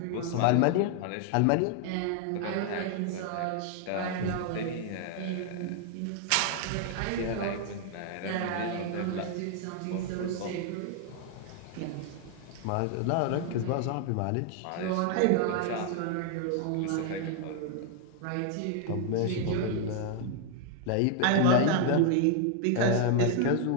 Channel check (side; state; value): both; different; correlation 0.00